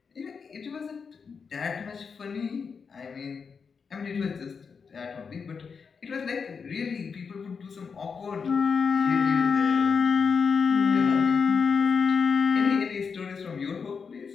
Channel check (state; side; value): quieter; right; 5.7 dB